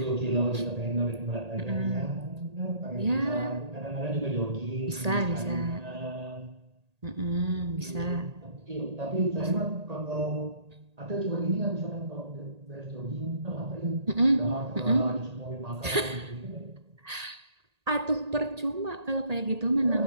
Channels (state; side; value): late; left; 1.8 ms